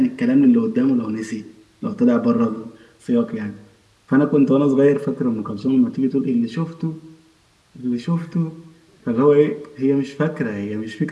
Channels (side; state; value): both; identical; correlation 1.00